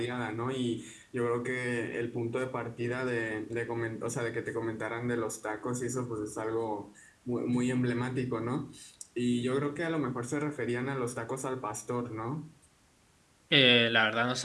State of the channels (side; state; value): both; identical; correlation 1.00